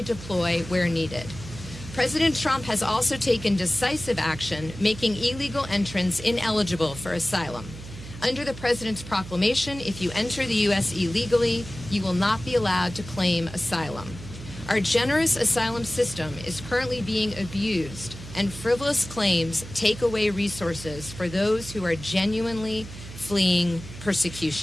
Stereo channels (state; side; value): noise; right; hum, 13 dB below the sound